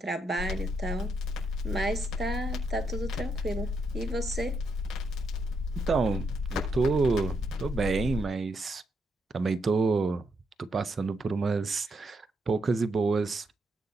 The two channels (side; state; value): both; normal; correlation 0.78